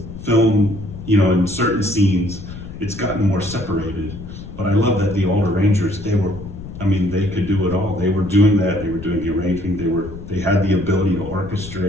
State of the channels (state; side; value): noise; left; rumble, 12 dB below the sound